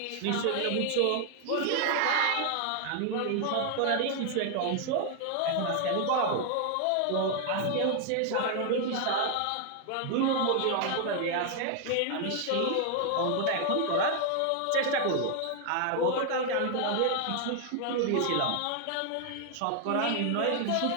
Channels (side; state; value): both; different; correlation 0.00